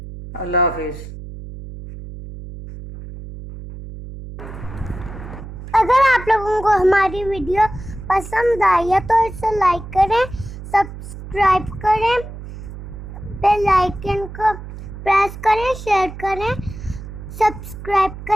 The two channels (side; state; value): right; noise; hum, 12 dB below the sound